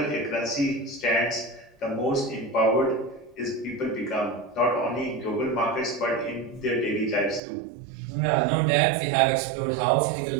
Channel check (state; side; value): drops out; left; at 7.4 s